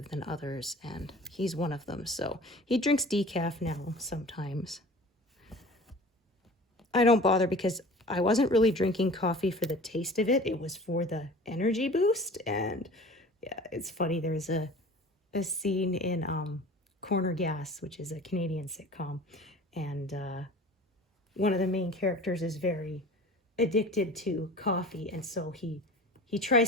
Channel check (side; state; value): both; normal; correlation 0.41